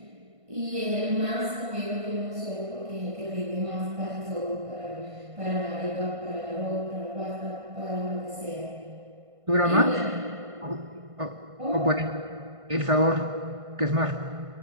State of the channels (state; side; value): late; left; 1.5 ms